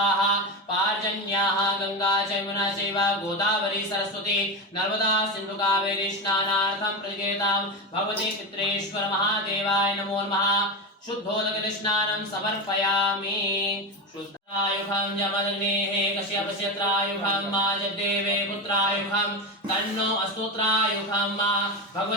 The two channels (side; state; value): both; normal; correlation 0.17